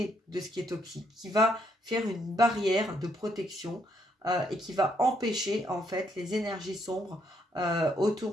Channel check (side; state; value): both; normal; correlation 0.72